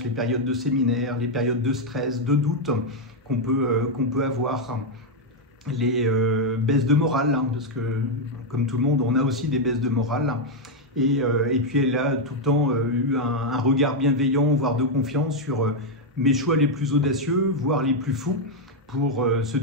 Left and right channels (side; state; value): both; normal; correlation 0.01